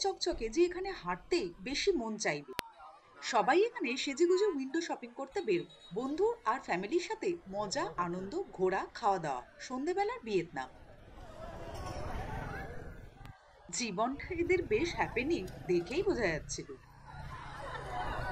চকচকে যে এখানে হাঁটতে বেশি মন চাইবে। সবাই এখানে সেজেগুজে উইন্ডো শপিং করতে বেরো। বন্ধু আর ফ্যামিলির সাথে মজা, আনন্দ, ঘোরা, খাওয়া দাওয়া। সন্ধেবেলার ভিয়েতনাম। জীবনটা এদের বেশ হ্যাপেনিং দেখেই বোঝা যাচ্ছিল।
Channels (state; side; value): identical; both; correlation 1.00